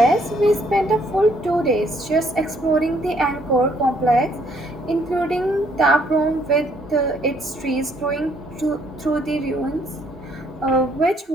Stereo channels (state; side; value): normal; both; correlation 0.67